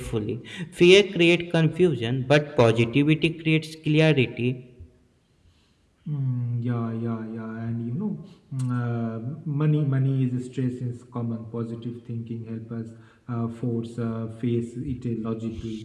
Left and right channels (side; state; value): both; identical; correlation 1.00